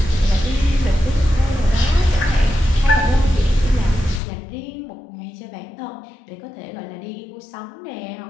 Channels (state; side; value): drops out; right; at 4.2 s